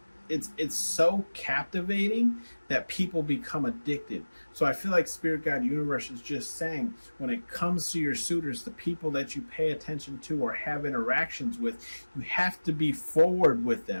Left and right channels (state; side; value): inverted; both; correlation -1.00